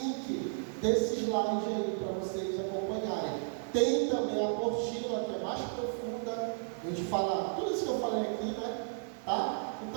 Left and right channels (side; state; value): left; silent; 55 dB below the other